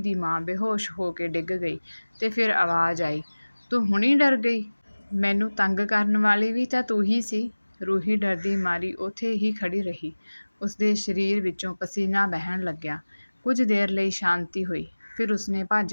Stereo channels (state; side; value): inverted; both; correlation -1.00